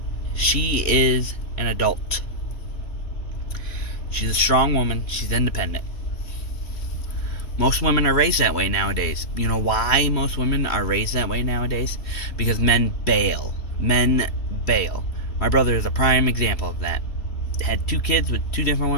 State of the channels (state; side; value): late; right; 3.2 ms